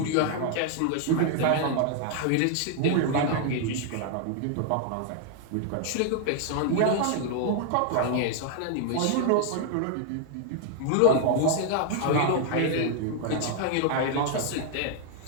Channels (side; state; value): both; different; correlation 0.00